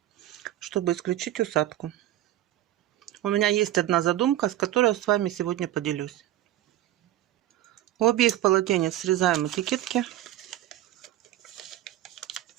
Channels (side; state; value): left; quieter; 13.6 dB